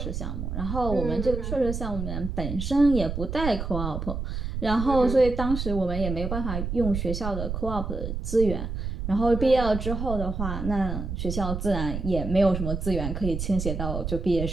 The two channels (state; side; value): noise; right; rumble, 4 dB below the sound